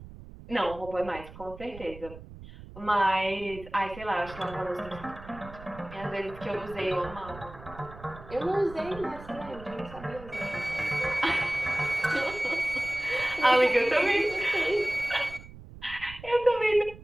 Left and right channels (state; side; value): noise; right; rumble, 16 dB below the sound